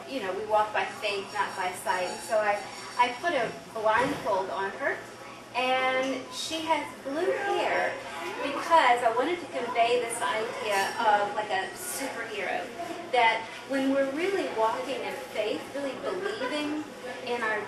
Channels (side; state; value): both; identical; correlation 1.00